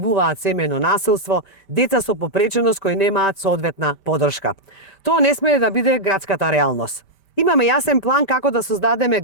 семејно насилство, деца со попреченост кои немаат соодветна поддршка. Тоа не смее да биде градската реалност. Имаме јасен план како да создадеме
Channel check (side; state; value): right; late; 5.1 ms